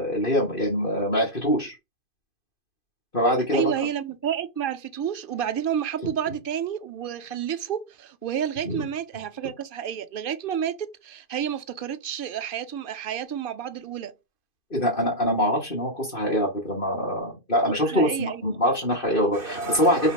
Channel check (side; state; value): right; late; 2.5 ms